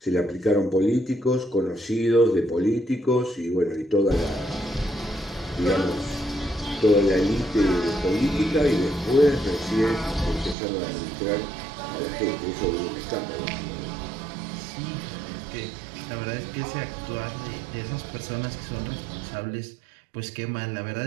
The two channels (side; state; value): left; drops out; at 10.6 s